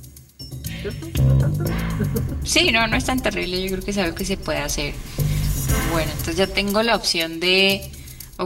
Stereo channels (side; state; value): both; identical; correlation 1.00